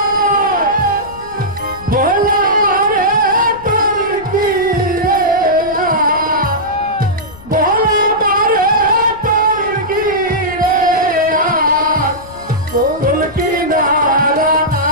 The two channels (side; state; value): left; noise; rumble, 20 dB below the sound